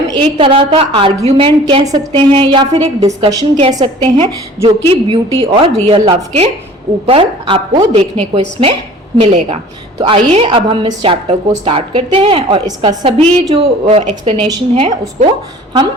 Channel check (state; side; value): normal; both; correlation 0.47